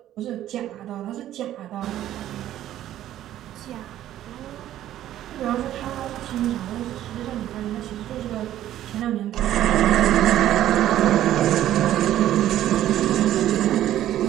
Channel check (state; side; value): quieter; left; 12.6 dB